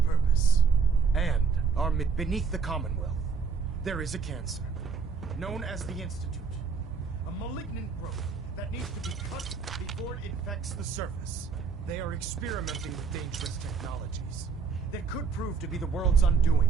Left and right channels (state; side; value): quieter; left; 5.5 dB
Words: and our beneath the Commonwealth. There is a cancer, known as the Institute. A malignant growth that needs to be cut before it infects the surface. They are experimenting with dangerous technologies that could prove to be the world's